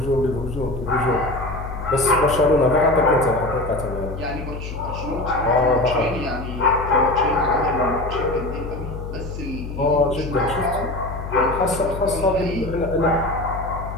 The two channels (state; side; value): noise; left; hum, 8 dB below the sound